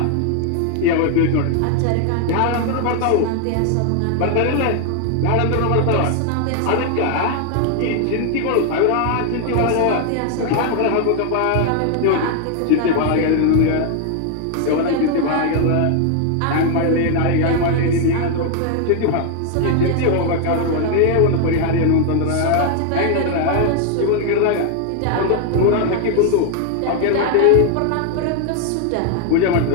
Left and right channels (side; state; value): both; different; correlation 0.00